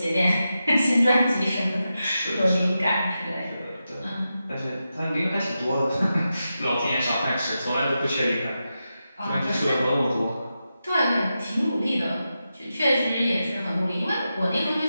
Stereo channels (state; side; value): inverted; both; correlation -0.89